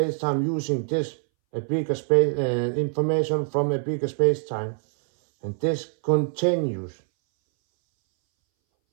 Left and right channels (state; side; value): silent; left; 61 dB below the other